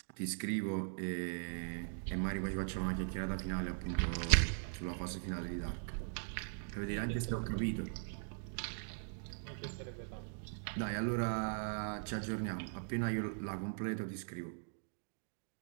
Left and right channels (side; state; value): left; silent; digital silence